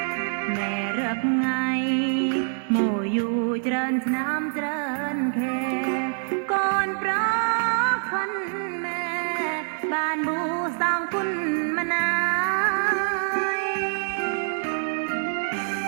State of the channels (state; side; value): silent; left; digital silence